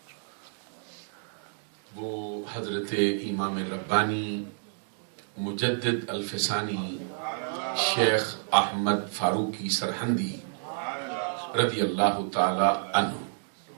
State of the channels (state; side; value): silent; left; digital silence